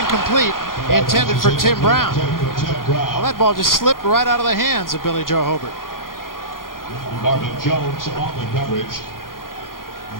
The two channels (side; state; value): right; late; 0.91 ms